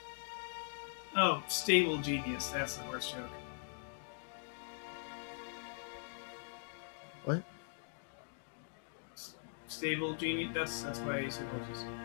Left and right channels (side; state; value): right; silent; digital silence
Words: Oh, stable genius. That's the horse joke. What? Stable genius. That's why I said horses.